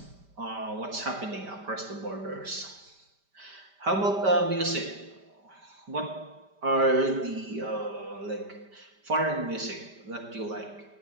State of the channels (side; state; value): left; late; 5.1 ms